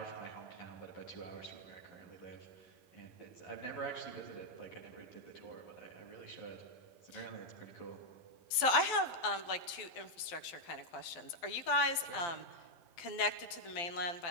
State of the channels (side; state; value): right; late; 12 ms